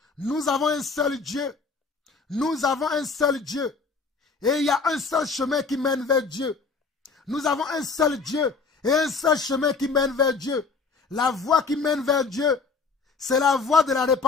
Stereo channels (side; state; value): right; quieter; 4.7 dB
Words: Nous avons un seul Dieu. Nous avons un seul Dieu. Et il y a un seul chemin qui mène vers Dieu. Nous avons un seul Dieu et un seul chemin qui mène vers Dieu. La voie qui mène vers Dieu, c'est la voie de la